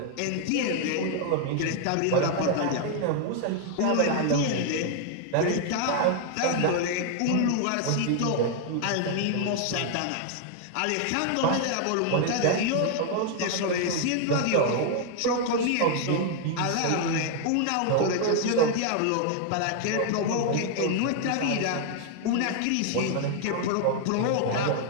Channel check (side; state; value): both; different; correlation 0.00